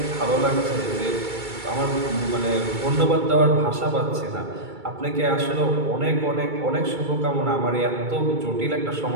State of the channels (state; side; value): late; left; 2.3 ms